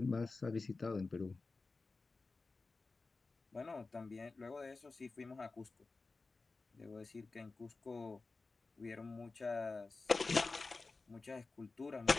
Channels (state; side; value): quieter; right; 3.8 dB